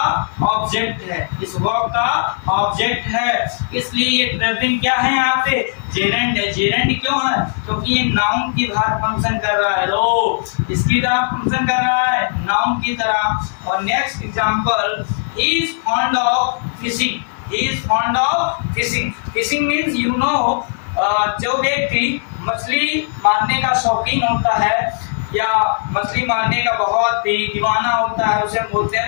ऑब्जेक्ट है, इस वर्ब का ऑब्जेक्ट है, इसलिए ये ट्रेवलिंग क्या है यहाँ पे जेरेंट है। जेरेंट क्यों है? क्योंकि ये नाउन की तरह फंक्शन कर रहा है। लो इसकी तरह फंक्शन कर रहा है, नाउन की तरह। और next example, he is fond of fishing, he is fond of fishing. Fishing means you know जो व्यक्ति मछली मारने का शौकीन होता है या मछली मारने का बहुत ही दीवाना होता है, उसे बोलते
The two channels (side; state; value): right; silent; 64 dB below the other